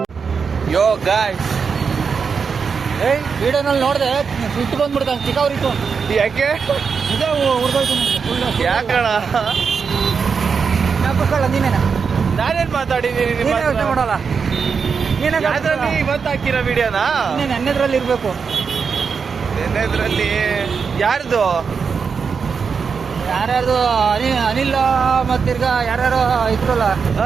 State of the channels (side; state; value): left; quieter; 5.8 dB